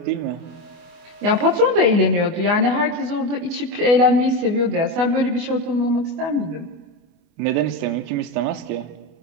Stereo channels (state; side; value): late; left; 24 ms